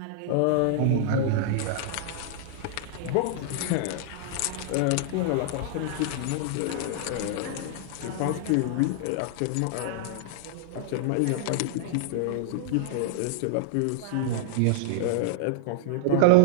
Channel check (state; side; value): different; both; correlation -0.01